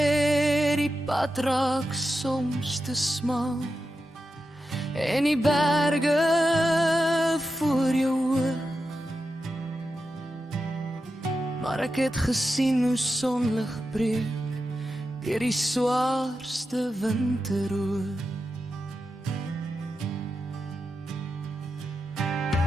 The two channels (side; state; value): both; normal; correlation 0.89